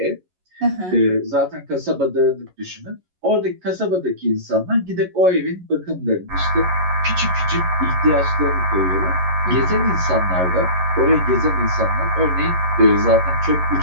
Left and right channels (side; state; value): left; late; 11 ms